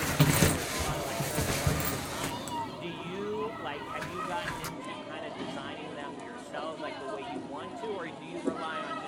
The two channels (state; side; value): identical; both; correlation 1.00